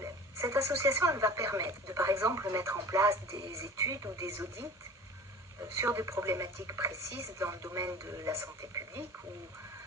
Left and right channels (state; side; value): normal; both; correlation 0.40